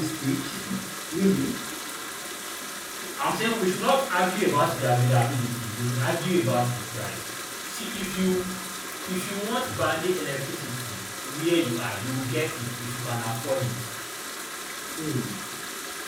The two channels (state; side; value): identical; both; correlation 1.00